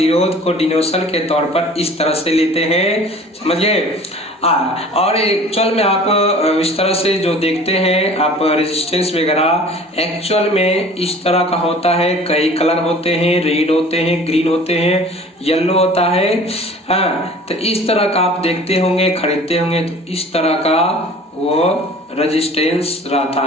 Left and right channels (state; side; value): normal; both; correlation 0.46